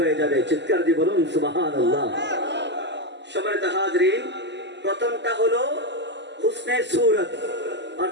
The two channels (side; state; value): left; late; 0.51 ms